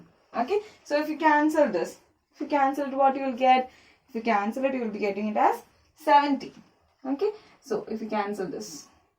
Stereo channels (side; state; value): both; identical; correlation 1.00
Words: Okay, so if you cancel this, if you cancel it, what you will get? If you cancel it, you will be getting it as 70. Okay, so if you cancel this,